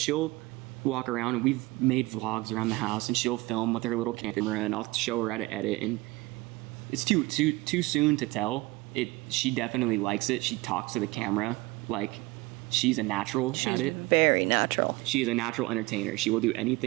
walk around, and we've made vlogs around the house, and she'll film with her little camera, and I'll show her how to edit, and it's too soon to tell. She definitely likes it. She talks to the camera like she's a natural at it. She's very natural. She is a natural entertainer. She will do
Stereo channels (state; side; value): quieter; left; 21.5 dB